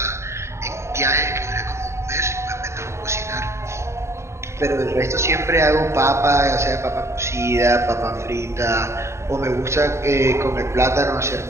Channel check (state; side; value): late; left; 0.13 ms